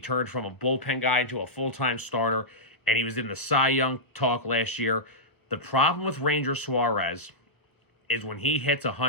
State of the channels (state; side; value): late; right; 1.2 ms